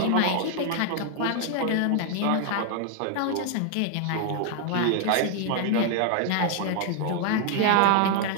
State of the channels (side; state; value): both; different; correlation 0.00